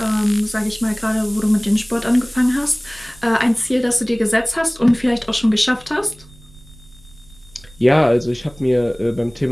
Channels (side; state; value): right; noise; rumble, 24 dB below the sound